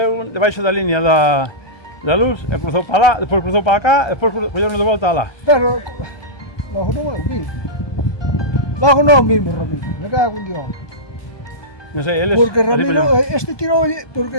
debaixo da línea da luz e cruzou para lá, despois cruzou para cá, e despois colleron de volta lá. Pero logo non é o mismo. Logo non mismo Ramiro, me cago en Dios. Non sei, eles... Porque ali Ramiro, poñeron- este tirou,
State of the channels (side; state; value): right; late; 1.2 ms